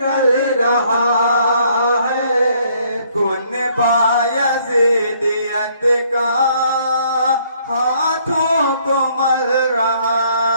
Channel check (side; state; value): both; inverted; correlation -0.65